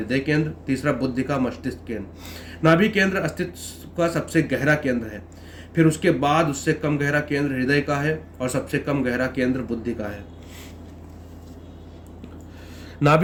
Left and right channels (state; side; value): identical; both; correlation 1.00